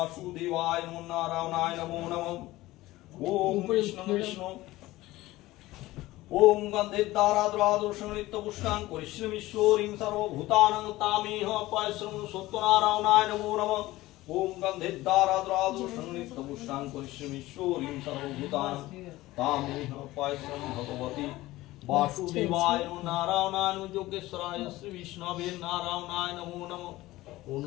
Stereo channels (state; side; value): quieter; right; 17.8 dB